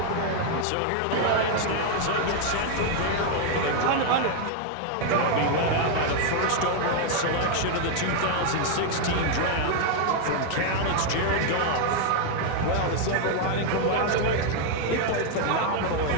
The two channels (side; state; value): both; different; correlation 0.00